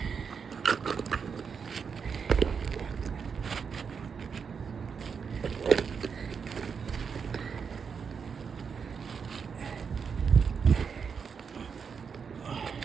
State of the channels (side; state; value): left; quieter; 6.2 dB